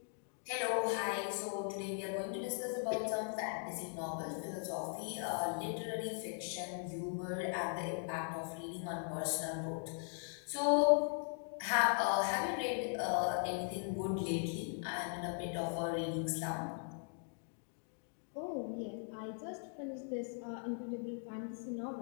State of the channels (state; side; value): silent; right; 51 dB below the other